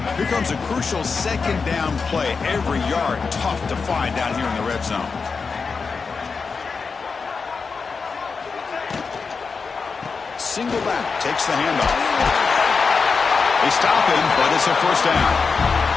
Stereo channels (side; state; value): right; quieter; 5.0 dB